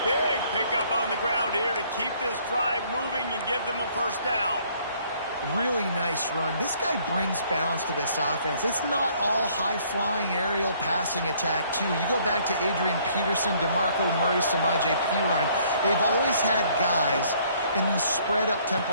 Big pickup on the ground here to keep this drive moving and give them a 1st down. Really nice run. This guy brings balance to this offense. It's not all high-flying aerial passing attack, too. You go back to Adrian Peterson, DeMarco Murray, Samaje Perine. They've always had guys in these spread-up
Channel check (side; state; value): both; inverted; correlation -0.62